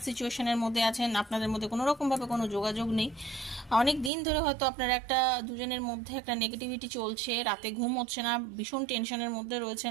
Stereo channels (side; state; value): left; drops out; at 4.1 s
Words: সিচুয়েশনের মধ্যে আছেন, আপনাদের মধ্যে কোনো রকমভাবে কোনো যোগাযোগ নেই। অনেক দিন ধরে হয়তো আপনারা একটা দুজনের মধ্যে একটা নেগেটিভিটি চলছে, রাতে ঘুম হচ্ছে না, ভীষণ টেনশনের মধ্যে